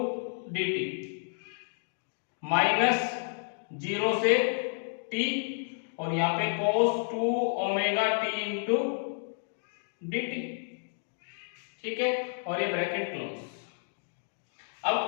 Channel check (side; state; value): right; silent; 57 dB below the other